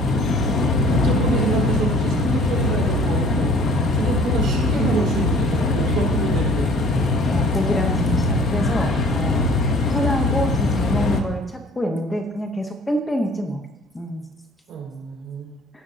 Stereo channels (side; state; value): both; normal; correlation 0.52